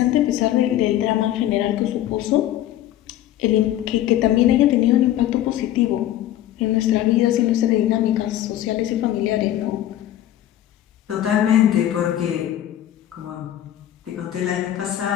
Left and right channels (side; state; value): right; quieter; 12.6 dB